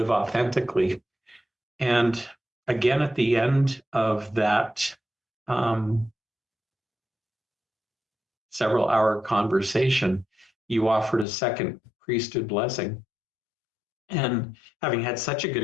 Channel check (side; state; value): right; drops out; at 11.2 s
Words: authentically. And again, at the end of that um, several hour conversation, you offered a second priesthood blessing. And having had such a good